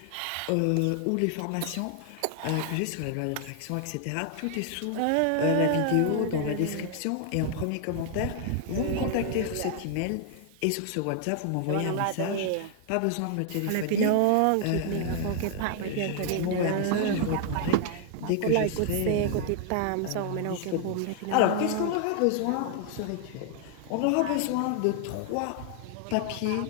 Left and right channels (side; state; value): both; different; correlation 0.00